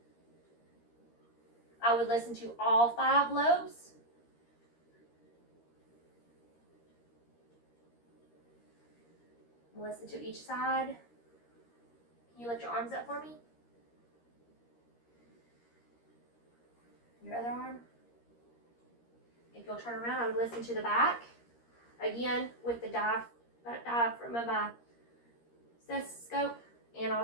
I would listen to all 5 lobes. Listen to each side. Can you lift your arms up for me? Your other arm. If you'll turn around, I would listen to the back. Again, with the diaphragm of my stethoscope and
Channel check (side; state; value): right; late; 13 ms